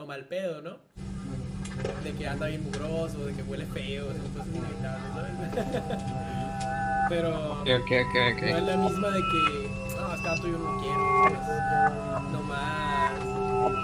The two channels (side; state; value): both; identical; correlation 1.00